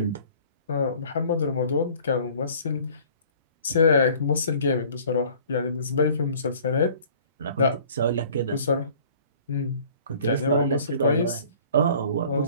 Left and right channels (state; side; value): inverted; both; correlation -0.52